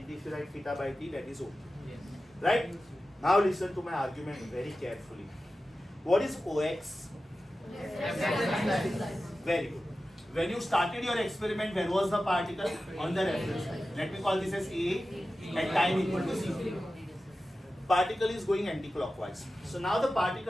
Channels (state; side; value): normal; both; correlation 0.94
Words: if you write theta by t, that is okay. Right? Now listen to my argument very carefully. What is OX? Very good. When you started your experiment, where was the particle? On the reference line. Let me call this as A at time equal to C. Particle is going anti-clockwise. So now the